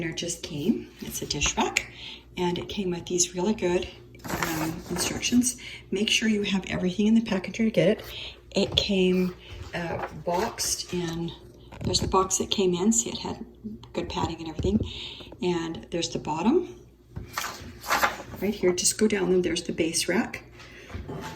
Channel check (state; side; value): identical; both; correlation 1.00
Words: just came. It's a dish rack, and it came with these really good instructions. Make sure you have everything in the package to get it. It came boxed in. There's the box that came in, see it had good padding and everything. And there's the bottom. Right here, just go down them. There's the base rack.